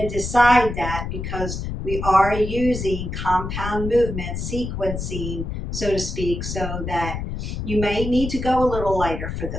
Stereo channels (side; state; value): left; noise; rumble, 5 dB below the sound